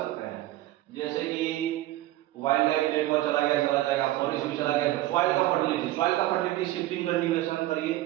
हैं, जैसे कि वाइल्ड लाइफ पेपर चला जाएगा, फॉरेस्ट भी चला गया। सॉइल का फर्टिलिटी शिफ्टिंग कल्टीवेशन करिए,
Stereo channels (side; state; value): left; quieter; 15.8 dB